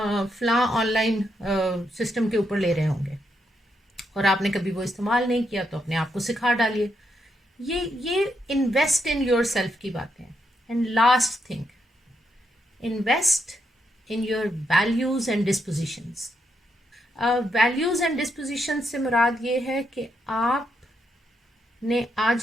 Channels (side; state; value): both; normal; correlation 0.80